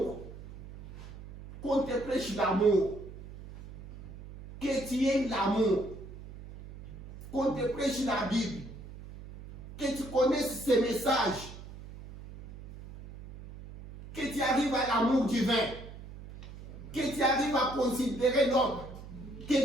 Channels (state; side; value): noise; right; hum, 15 dB below the sound